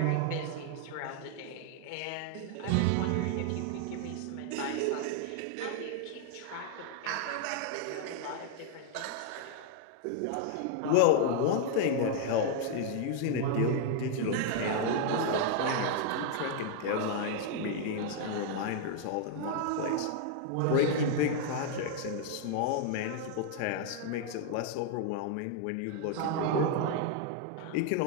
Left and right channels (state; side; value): different; both; correlation 0.00